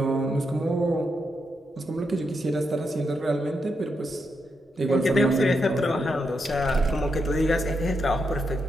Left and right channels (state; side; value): normal; both; correlation 0.83